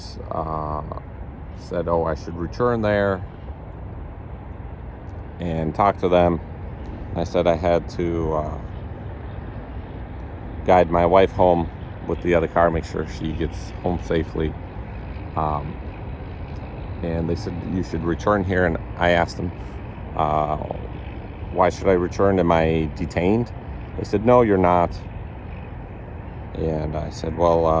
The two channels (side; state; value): both; identical; correlation 1.00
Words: said, oh, I should return there and talk to them. I said I had to guide my wife home with the other car, make sure she gets home safely. And they said, you should return here. And I asked them, why should I return? Am I detained? They said, no, you're not. And I said,